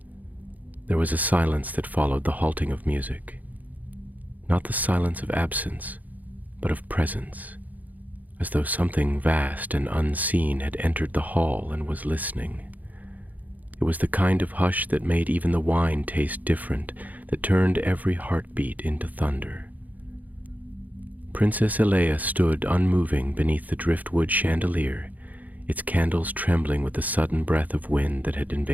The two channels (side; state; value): left; late; 0.079 ms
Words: There was a silence that followed the halting of music. Not the silence of absence, but of presence, as though something vast and unseen had entered the hall and was listening. It was the kind of hush that made even the wine taste different, that turned every heartbeat into thunder. Princess Elea stood unmoving beneath the driftwood chandelier, its candles trembling with the sudden breath of wind that had